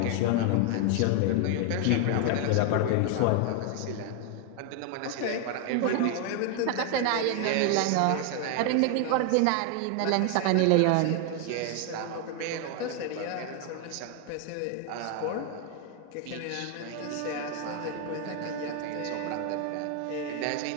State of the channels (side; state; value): both; different; correlation 0.00